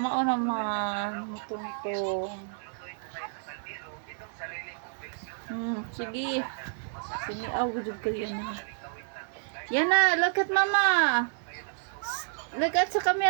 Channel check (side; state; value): left; silent; digital silence